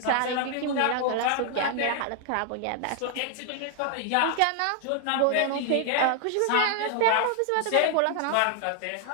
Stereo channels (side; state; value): both; different; correlation 0.00